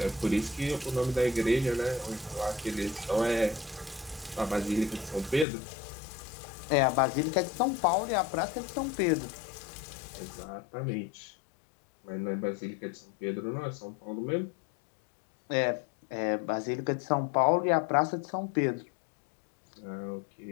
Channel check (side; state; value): right; drops out; at 5.5 s